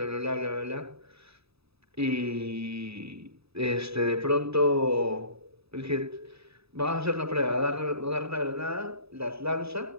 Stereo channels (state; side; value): late; left; 0.78 ms